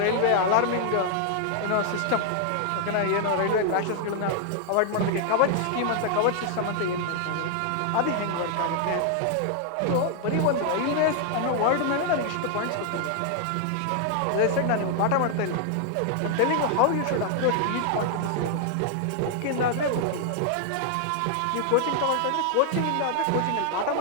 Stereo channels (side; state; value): both; different; correlation 0.00